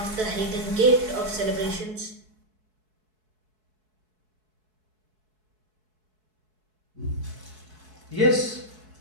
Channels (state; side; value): late; left; 4.6 ms